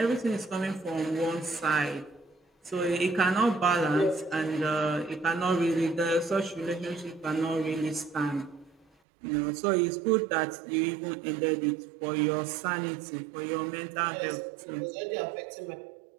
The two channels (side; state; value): left; drops out; at 8.8 s